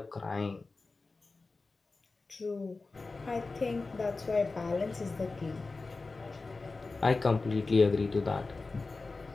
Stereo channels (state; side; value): quieter; right; 3.8 dB